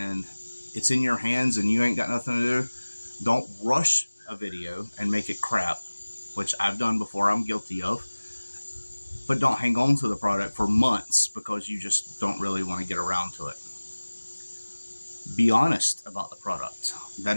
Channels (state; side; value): inverted; both; correlation -1.00